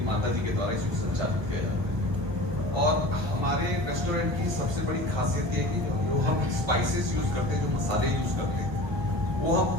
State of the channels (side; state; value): left; late; 1.1 ms